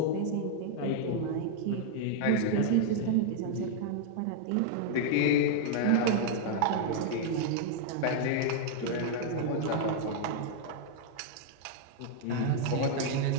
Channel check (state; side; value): different; both; correlation -0.01